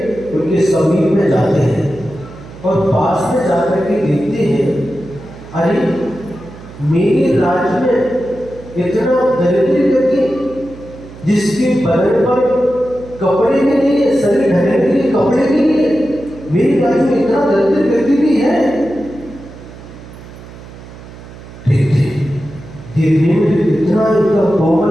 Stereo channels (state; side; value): noise; right; hum, 17 dB below the sound